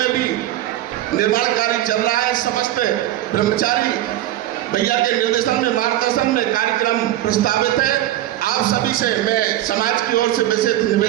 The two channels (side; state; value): left; quieter; 13.6 dB